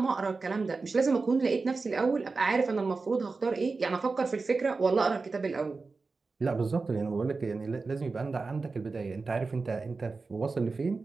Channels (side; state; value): left; quieter; 4.1 dB